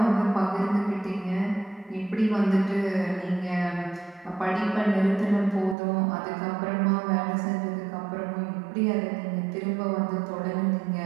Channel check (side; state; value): left; drops out; at 5.8 s